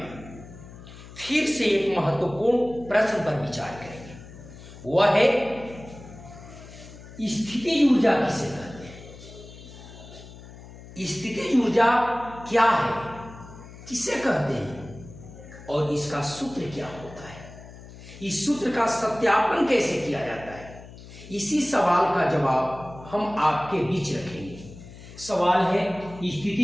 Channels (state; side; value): noise; left; hum, 17 dB below the sound